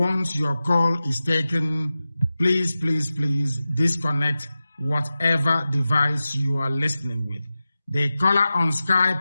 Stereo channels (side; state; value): both; inverted; correlation -0.94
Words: please, please, please disconnect whatever device you are listening with. The caller on